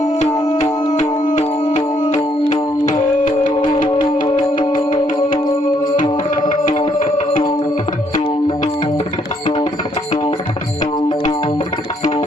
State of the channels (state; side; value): normal; both; correlation 0.70